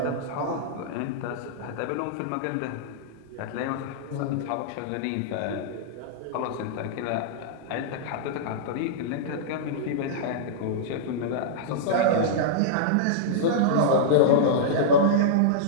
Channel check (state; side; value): different; both; correlation -0.03